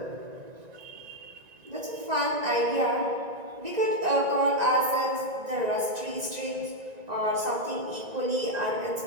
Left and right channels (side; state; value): left; late; 1.9 ms